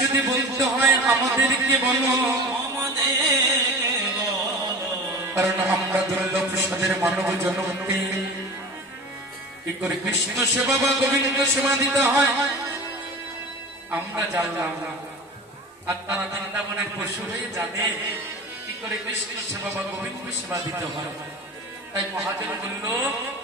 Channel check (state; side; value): normal; both; correlation 0.34